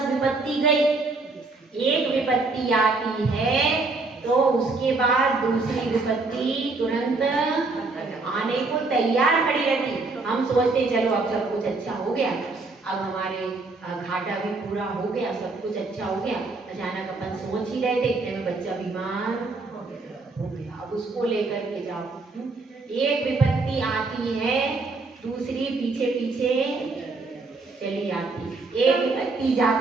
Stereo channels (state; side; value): quieter; left; 3.6 dB